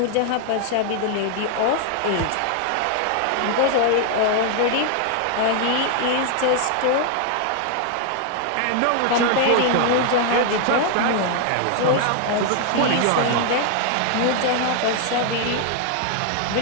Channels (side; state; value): both; different; correlation 0.00